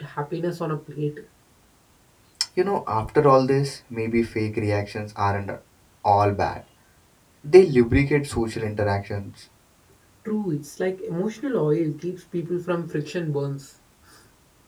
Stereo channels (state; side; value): identical; both; correlation 1.00